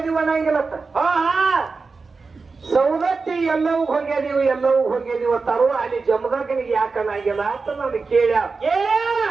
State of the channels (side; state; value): left; quieter; 4.3 dB